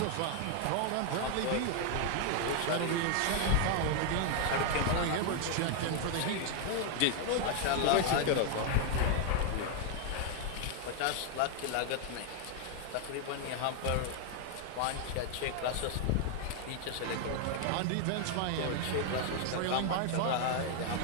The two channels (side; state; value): both; different; correlation 0.00